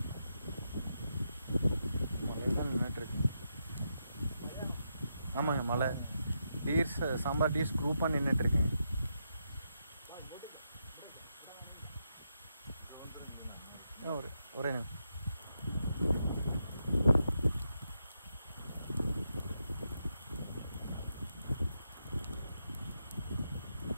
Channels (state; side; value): inverted; both; correlation -0.84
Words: மழை தான் நின்றுட்டுருக்கு. ஆமாங்க மழை. டீர்ஸ் சாம்பார் டீர்ஸ் குரூப்பாக நின்றுட்டுருக்குங்க. ஒரே நிமிஷம்.